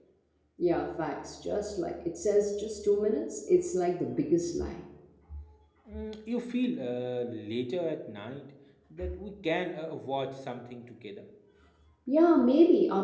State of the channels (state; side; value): identical; both; correlation 1.00